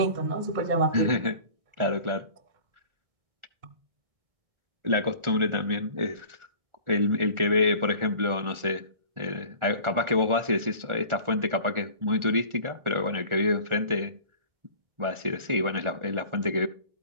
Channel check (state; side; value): late; left; 1.4 ms